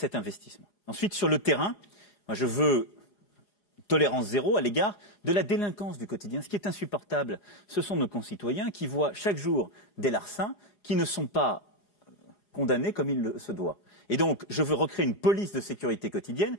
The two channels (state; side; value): late; right; 4.9 ms